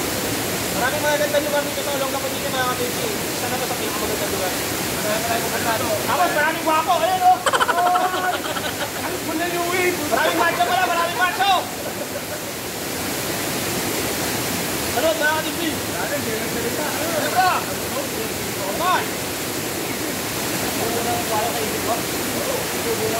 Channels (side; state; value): both; identical; correlation 1.00